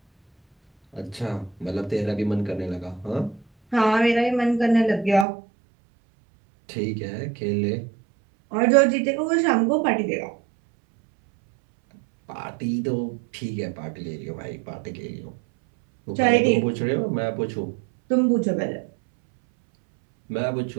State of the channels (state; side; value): drops out; left; at 5.2 s